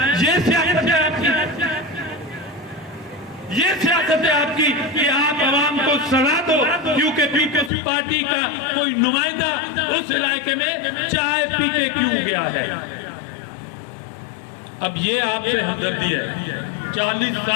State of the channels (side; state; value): right; drops out; at 7.7 s